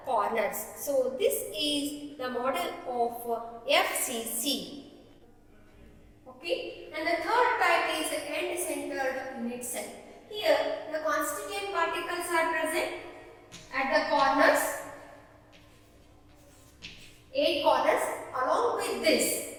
corners. So, this is the model of FCC. Okay. And the third type is end-centered unit cell. Here, the constituent particles are present at the corners, 8 corners. Along with this,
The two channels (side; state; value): both; identical; correlation 1.00